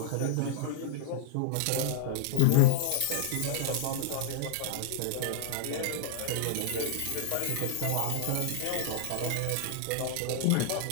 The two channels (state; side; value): different; both; correlation -0.01